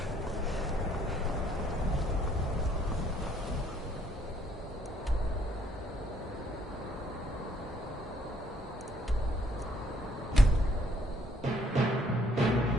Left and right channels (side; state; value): both; normal; correlation 0.65